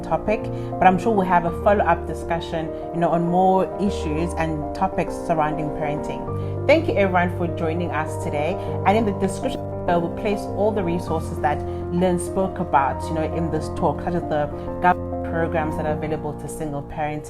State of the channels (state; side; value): identical; both; correlation 1.00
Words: topic, but I'm sure we'll have a follow-up discussion, on more issues and topics surrounding parenting. Thank you everyone for joining us today, and in the description we'll place all the resources that Lynn spoke about, in this talk, such as the government programs that are available to single